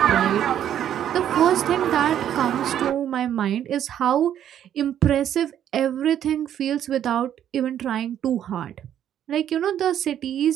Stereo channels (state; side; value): quieter; left; 10.3 dB